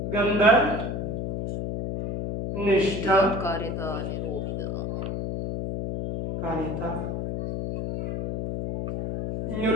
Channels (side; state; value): left; noise; hum, 3 dB below the sound